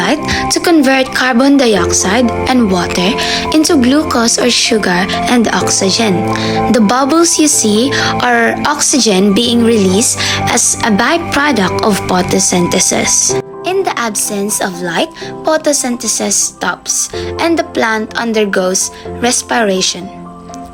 to convert carbon dioxide and water into glucose or sugar and oxygen. The bubbles you see are oxygen being released as a byproduct of photosynthesis. In the absence of light, photosynthesis stops and the plant undergoes respiration.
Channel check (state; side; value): identical; both; correlation 1.00